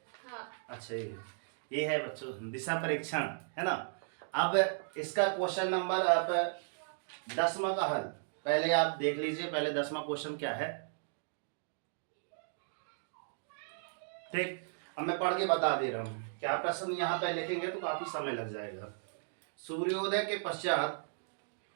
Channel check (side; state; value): left; silent; digital silence